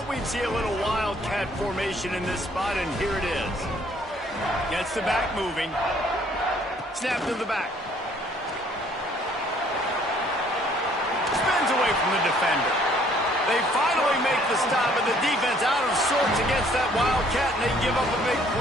we'd see a little wildcat formation in this spot, and here it is. Gets the back moving. Snap to the back. Spins away from the defender. They finally make the stop, and the defense out of sorts against that wildcat, and they give up a big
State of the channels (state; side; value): normal; both; correlation 0.61